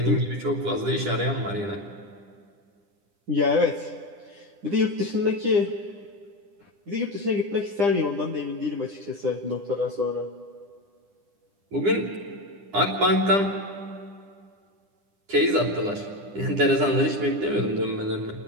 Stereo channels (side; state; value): left; late; 9.9 ms